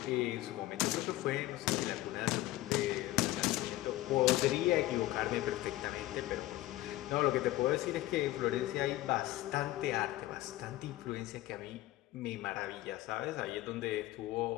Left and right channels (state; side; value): quieter; right; 16.3 dB